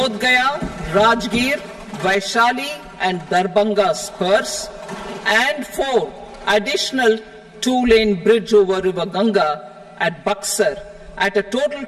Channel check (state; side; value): identical; both; correlation 1.00